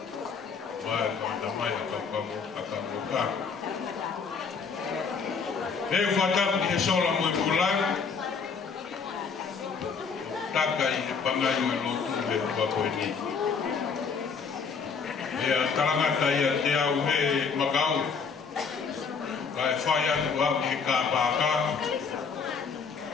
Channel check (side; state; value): right; quieter; 5.6 dB